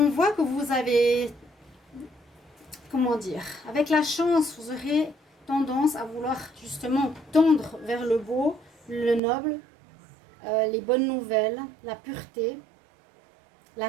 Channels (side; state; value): left; drops out; at 9.2 s